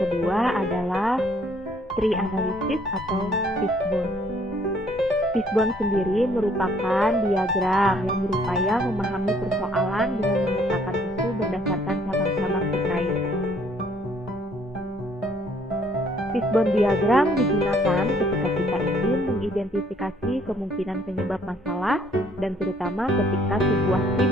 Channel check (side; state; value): both; normal; correlation 0.63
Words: adalah tree analysis atau fishbone. Fishbone sendiri merupakan diagram yang berupaya memahami persoalan dengan memetakan isu berdasarkan cabang-cabang terkait. Fishbone diagram digunakan ketika kita ingin mengidentifikasi kemungkinan penyebab masalah dan terutama ketika sebuah tim